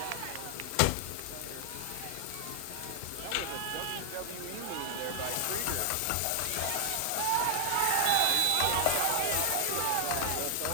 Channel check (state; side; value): different; both; correlation 0.00